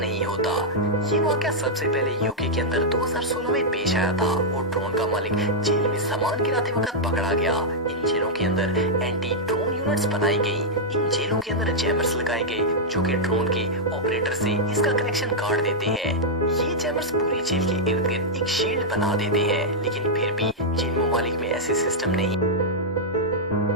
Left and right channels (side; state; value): both; normal; correlation -0.06